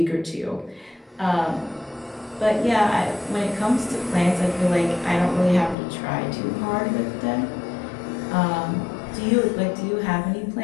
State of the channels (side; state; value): right; drops out; at 5.8 s